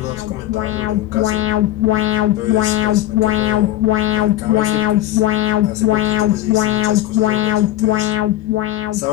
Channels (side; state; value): right; quieter; 14.0 dB